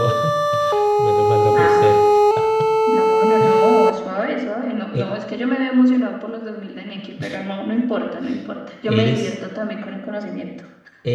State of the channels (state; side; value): identical; both; correlation 1.00